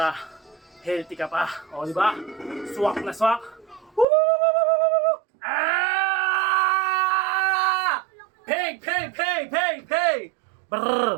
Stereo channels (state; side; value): drops out; left; at 4.0 s